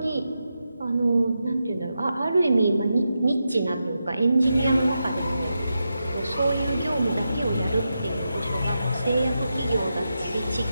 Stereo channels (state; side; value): inverted; both; correlation -0.88